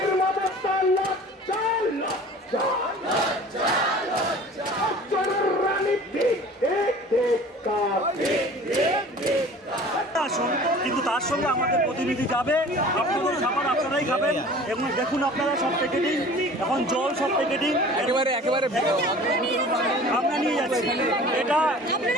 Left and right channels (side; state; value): both; normal; correlation 0.44